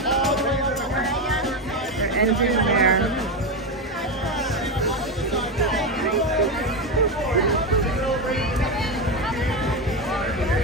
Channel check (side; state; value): both; normal; correlation 0.13